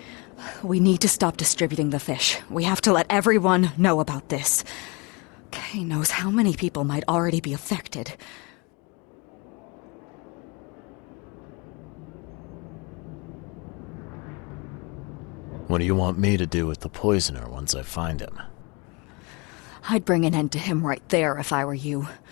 We need to stop distributing the fish. We have to let everyone know about this. Kay knows how many people might already be affected. What do you want me to do with the poisoner once I find him? I'd bring an end to him right there if I were you.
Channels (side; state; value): right; quieter; 28.3 dB